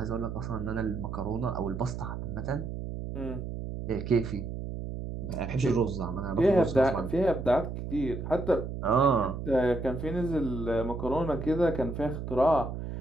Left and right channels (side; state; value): right; noise; hum, 6 dB below the sound